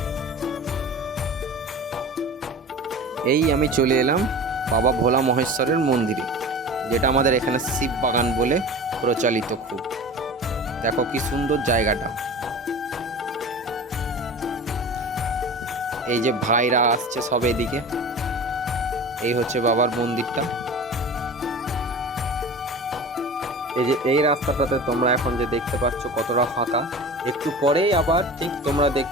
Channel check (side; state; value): both; normal; correlation 0.35